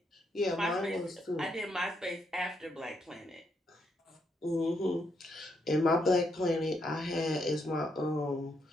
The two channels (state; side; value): normal; both; correlation 0.77